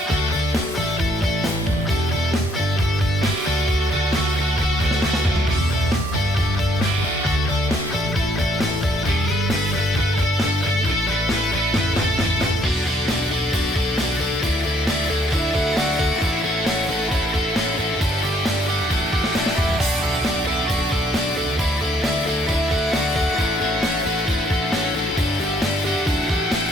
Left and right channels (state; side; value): normal; both; correlation 0.66